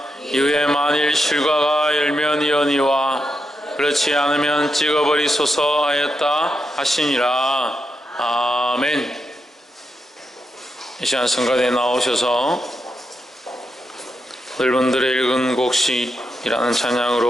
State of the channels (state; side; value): normal; both; correlation 0.85